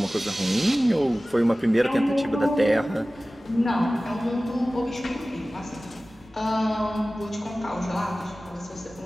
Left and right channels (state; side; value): normal; both; correlation 0.97